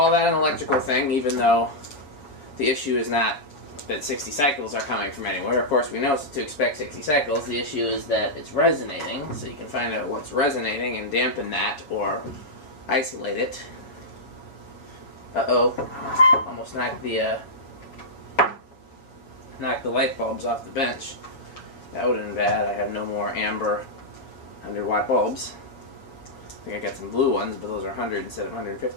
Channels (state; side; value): late; right; 7.5 ms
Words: that an electrical thing, even though the issue is not that 60 cycles are coming from anywhere. Of course, we know to expect 60 cycles. The issue is that it's resonating, so you can find out what's resonating and dampen that or isolate it. Uh-oh, almost knocked the light bulbs off the bench. That would have been bad. I have no more amber 100-watt bulbs. I think I got some blue ones, but those are 100 instead of